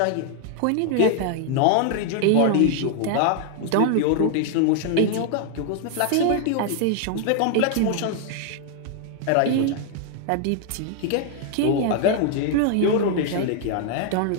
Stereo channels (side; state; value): both; different; correlation 0.00